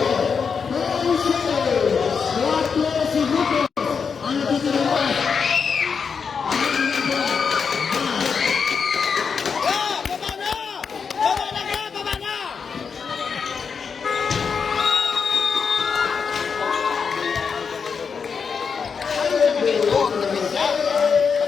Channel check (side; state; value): right; quieter; 5.9 dB